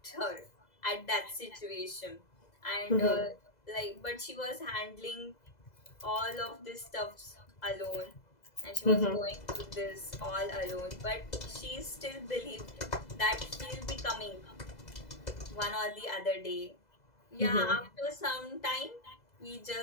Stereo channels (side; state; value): right; late; 2.0 ms